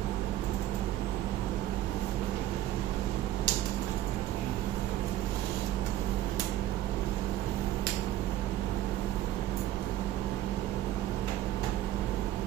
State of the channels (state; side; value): quieter; left; 13.7 dB